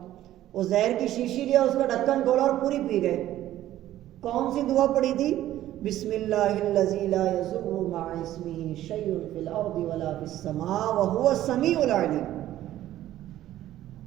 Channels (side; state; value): left; quieter; 13.5 dB